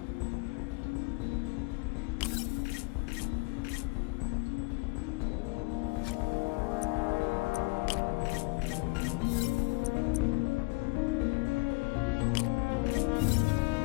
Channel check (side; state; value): right; quieter; 27.3 dB